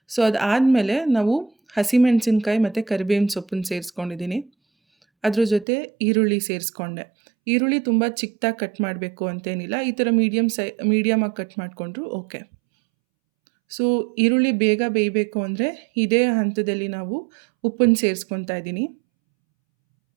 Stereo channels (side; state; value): left; drops out; at 5.7 s